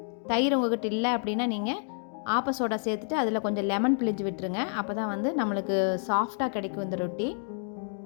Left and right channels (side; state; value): right; silent; 59 dB below the other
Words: தயிர் உங்கள்கிட்ட இல்லை அப்படின்னா நீங்கள் ஆப்ப சோடா சேர்த்துட்டு அதில் கொஞ்சம் லெமன் பிழிஞ்சு விட்டுருங்க. அப்போ தான் வந்து நம்மளுக்கு சாஃப்டாக கிடைக்கும் இந்த ரொட்டி.